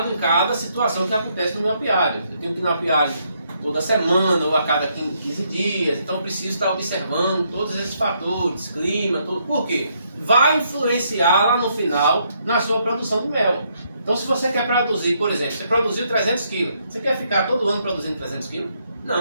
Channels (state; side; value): inverted; both; correlation -0.74